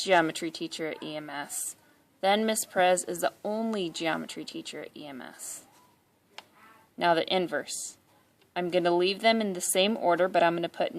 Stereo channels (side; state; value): both; identical; correlation 1.00